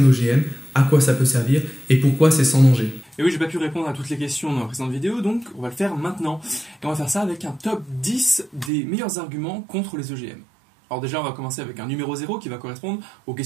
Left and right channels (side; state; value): left; drops out; at 8.7 s